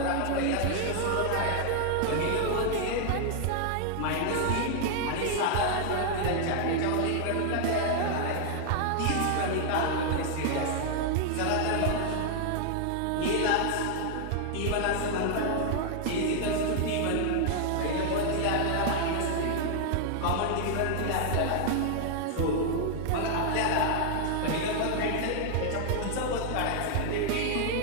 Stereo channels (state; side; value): different; both; correlation 0.00